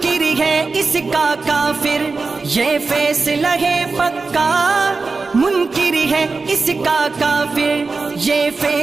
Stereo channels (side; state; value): left; quieter; 4.1 dB